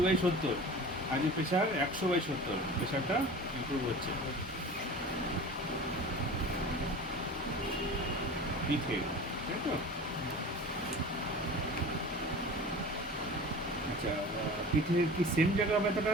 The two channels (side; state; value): both; normal; correlation 0.37